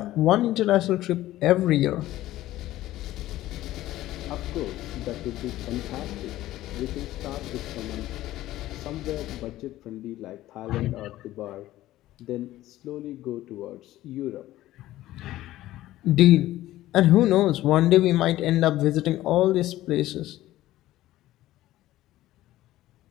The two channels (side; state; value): right; quieter; 15.2 dB